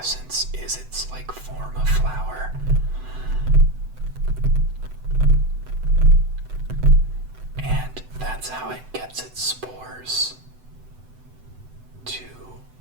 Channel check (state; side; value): late; left; 7.9 ms